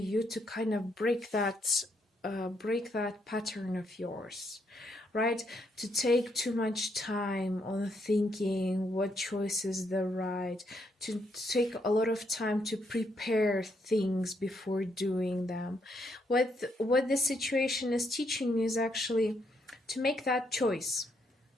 to kind of break that pattern of yours, right? To take too much time on thinking what choice is the right, to take a lot of time to prepare things before doing them. What this situation is teaching you is actually to make that choice.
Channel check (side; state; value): both; normal; correlation 0.76